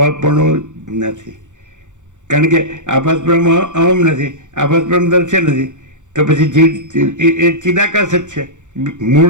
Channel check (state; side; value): late; left; 0.85 ms